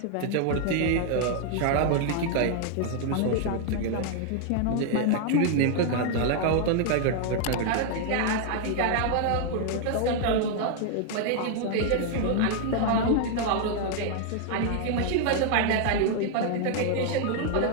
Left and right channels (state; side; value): different; both; correlation 0.00